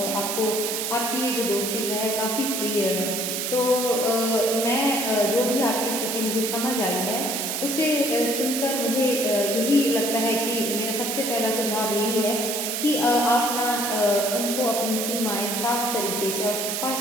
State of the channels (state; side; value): noise; right; hiss, 2 dB below the sound